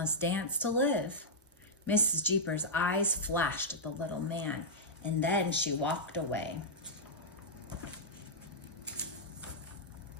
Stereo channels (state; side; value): normal; both; correlation -0.08